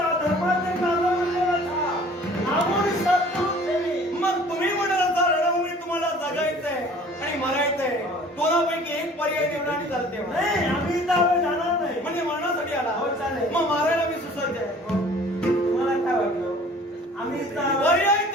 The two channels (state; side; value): normal; both; correlation 0.50